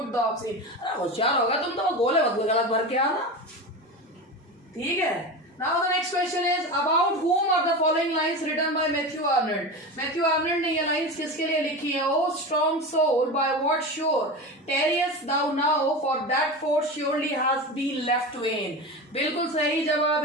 द ऑब्सीन। अरे होशियार होगा तुम तो, गोले गलत भर के आना। ठीक है। Now the next question is, about whom are the following lines written by Matthew Arnold? Matthew Arnold ने ये lines किसके लिए लिखी है? Oh strong soul, by what shore tarriest thou now, for that force surely has been left vain. बिल्कुल सही जवाब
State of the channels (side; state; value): both; normal; correlation 0.25